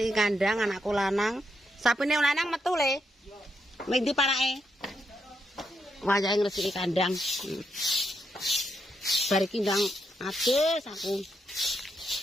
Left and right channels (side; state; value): both; normal; correlation 0.81